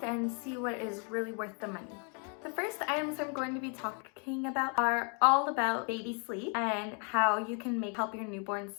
and see what is really worth the money. The first items I'm going to be talking about are all about baby sleep and how you can help your newborn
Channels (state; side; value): quieter; right; 38.5 dB